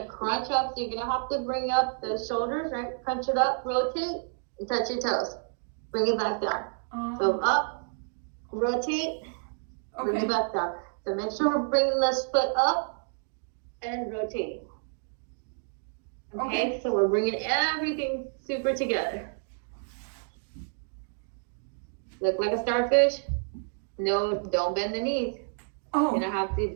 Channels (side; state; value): left; silent; 58 dB below the other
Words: crunch up. So you're gonna have to bring up the shoulders, right? Crunch it up, rotate, and touch your toes. Bring it back down. So up, rotate, bring it back down. So make sure we're bringing this foot up and rotating. Okay, so we're bringing everything super together. Look like a starfish. No, don't bend the knees. You're gonna have to,